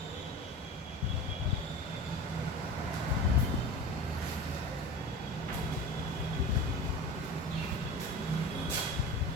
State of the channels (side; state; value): both; normal; correlation 0.33